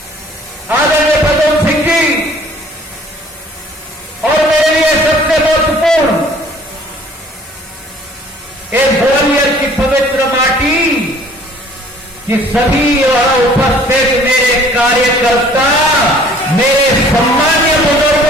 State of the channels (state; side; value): normal; both; correlation 0.54